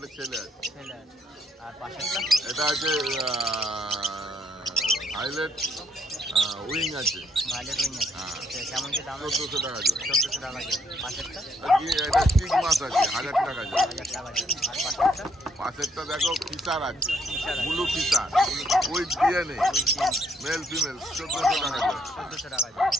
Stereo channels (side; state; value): both; normal; correlation 0.71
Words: ছেলে আছে। ছেলে আছে। আর পাশেরটা? এটা আছে ভায়োলেট উইং আছে। ভায়োলেট উইং আছে। কেমন কি দাম? 1400 টাকা জোড়া। 1400 টাকা জোড়া। পাশেরটা? এটা স্টিক মাছ আছে 1000 টাকা জোড়া। 1000 টাকা জোড়া। আর পাশেরটা? পাশেরটা দেখো ফিচার আছে, blue feature with DNA, male female, 1400 টাকা জোড়া। 1400 টাকা জোড়া।